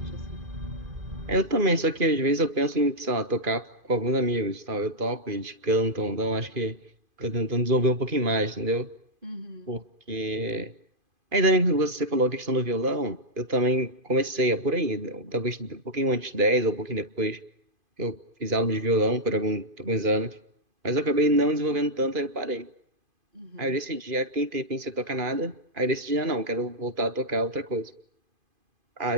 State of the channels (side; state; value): left; late; 2.5 ms